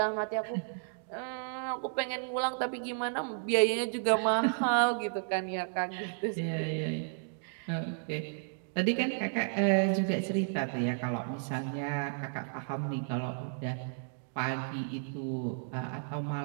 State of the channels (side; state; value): left; silent; digital silence